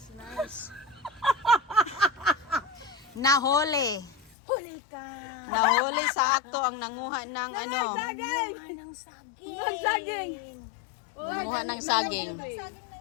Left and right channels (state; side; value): drops out; right; at 4.4 s